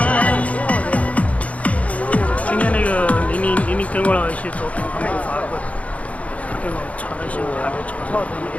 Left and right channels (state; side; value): late; right; 0.066 ms